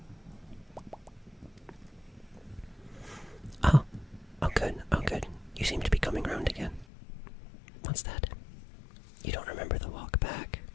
Oh good. You seem to be coming round again. What's that? You don't remember the walk back?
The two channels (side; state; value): right; drops out; at 6.9 s